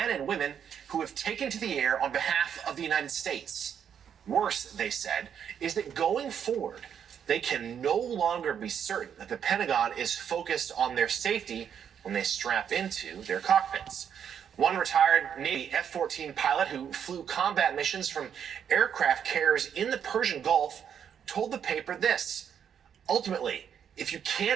and women who have taken to the air on behalf of the United States. Worse, they said, is that going forward, they can no longer be certain that the Pentagon is focused on their safety when they strap into their cockpits. One retired Navy F-14 pilot who flew combat missions from aircraft carriers in the Persian Gulf told the paper this: ultimately, if you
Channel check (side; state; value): left; quieter; 8.3 dB